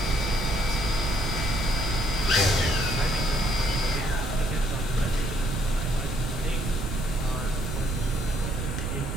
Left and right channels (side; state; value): right; noise; rumble, 3 dB below the sound